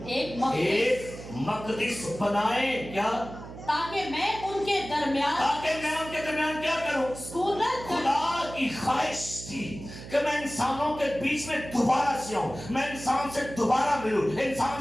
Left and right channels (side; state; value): right; noise; hum, 13 dB below the sound